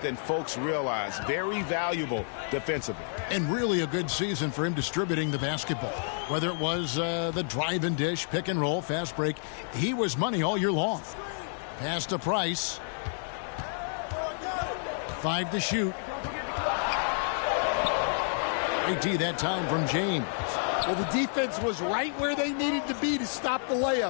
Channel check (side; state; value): right; silent; digital silence